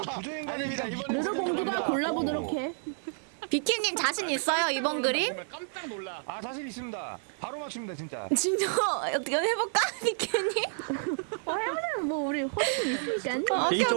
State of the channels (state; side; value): silent; left; digital silence